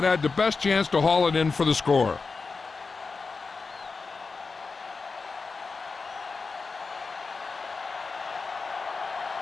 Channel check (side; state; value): right; quieter; 4.4 dB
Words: had the best chance to haul it in for the score.